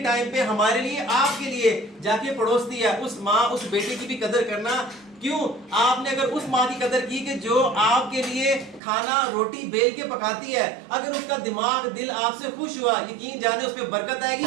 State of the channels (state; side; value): drops out; left; at 8.8 s